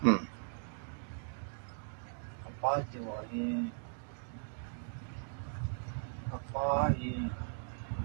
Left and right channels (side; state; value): left; silent; digital silence